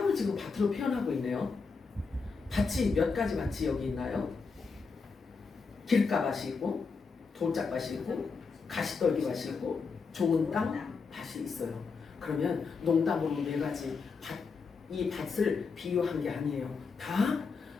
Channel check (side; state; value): right; quieter; 4.9 dB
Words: 지금 밭으로 표현하고 있네요. 밭이 몇 가지 밭이 여기 있나요? 길가밭이 있고, 돌짝밭이 있고, 가시떨기밭이 있고, 좋은 땅 밭이 있어요. 그러면 농담으로 4가지 밭, 이 밭을 비유한 게 아니에요. 다